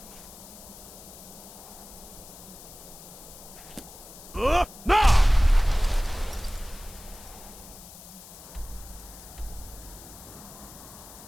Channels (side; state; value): left; noise; hiss, 17 dB below the sound